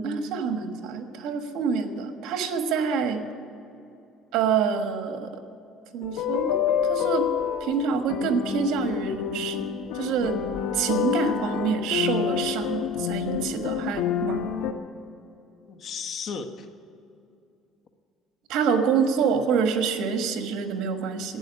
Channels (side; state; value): both; normal; correlation 0.37